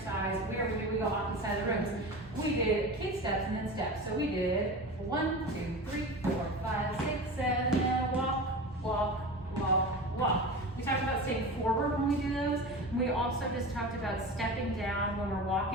where we go off the side of the rooms. We did kick steps and then steps. So we did 1, 2, 3, 4, 5, 6, 7, and walk, walk, walk, walk. We talked about staying forward when we do those. We also just talked about stepping down when we're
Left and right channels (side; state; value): both; normal; correlation 0.30